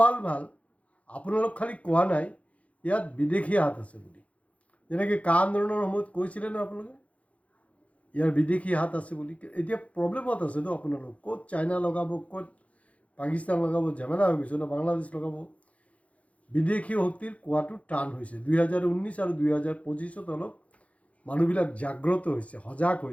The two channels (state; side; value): late; right; 0.065 ms